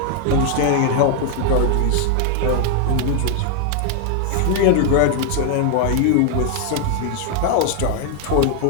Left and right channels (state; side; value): different; both; correlation 0.00